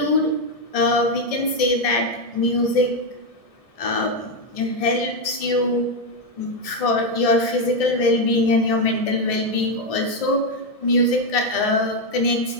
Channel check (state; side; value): late; right; 1.7 ms